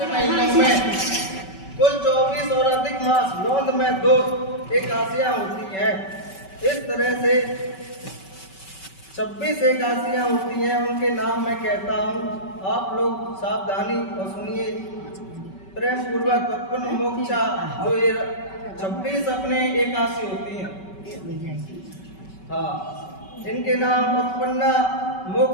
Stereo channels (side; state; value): right; late; 5.3 ms